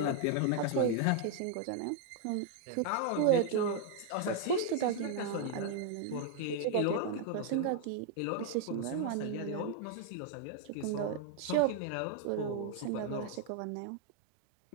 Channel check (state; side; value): different; both; correlation 0.00